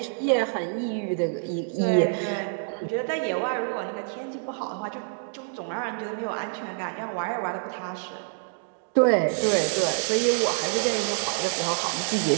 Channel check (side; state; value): left; silent; digital silence